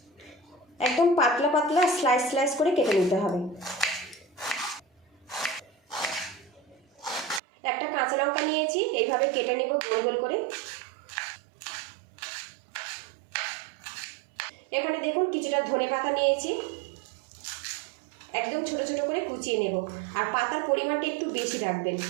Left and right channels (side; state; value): left; drops out; at 7.4 s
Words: একদম পাতলা পাতলা স্লাইস স্লাইস করে কেটে নিতে হবে। একটা কাঁচা লঙ্কা নিয়েছি, এইভাবে কেটে নেব গোল গোল করে। এখানে দেখুন কিছুটা ধনেপাতা নিয়েছি, একদম ছোট ছোট করে কুচিয়ে নেব। আর পাতার পরিমাণটা একটু বেশি রাখবেন।